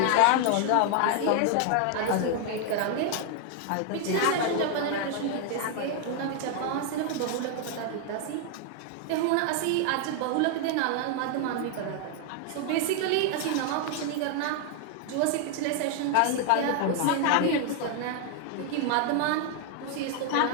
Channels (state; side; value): different; both; correlation 0.00